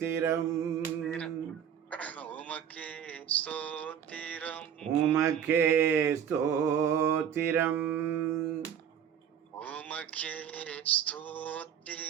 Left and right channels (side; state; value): left; quieter; 8.7 dB